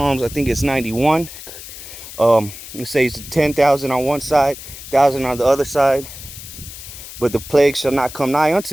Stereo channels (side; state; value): left; noise; hiss, 13 dB below the sound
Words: I think it's 91. It says 10,000 on one side, 1,000 on the other side, but the plague shall not come nigh